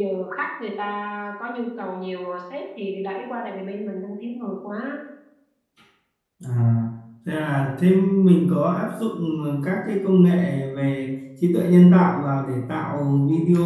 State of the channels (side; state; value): both; identical; correlation 1.00